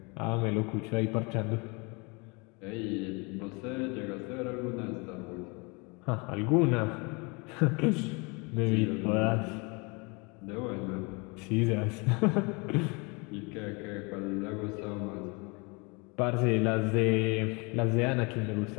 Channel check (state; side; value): quieter; right; 29.6 dB